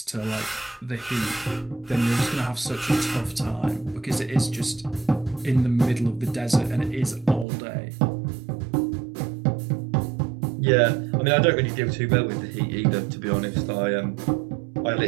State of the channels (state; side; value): drops out; left; at 7.5 s